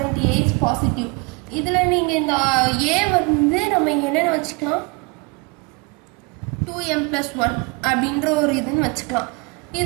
A is positive. இதில் நீங்கள் இந்த A வந்து நம்ம என்னென்னு வச்சுக்கலாம் 2m plus 1 அப்படின்ற ஒரு இதுன்னு வச்சுக்கலாம்.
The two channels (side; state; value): left; quieter; 29.3 dB